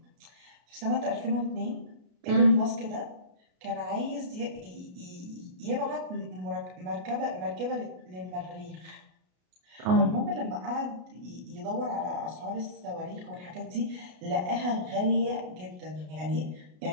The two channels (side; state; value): left; late; 33 ms